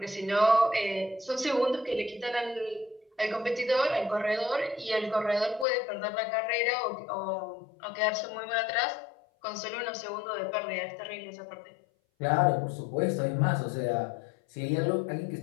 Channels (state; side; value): drops out; right; at 5.7 s